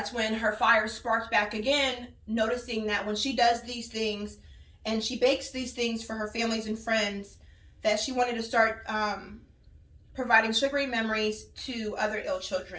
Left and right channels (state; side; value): identical; both; correlation 1.00